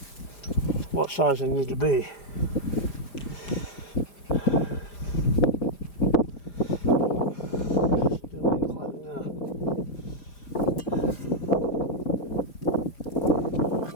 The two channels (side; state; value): right; late; 4.9 ms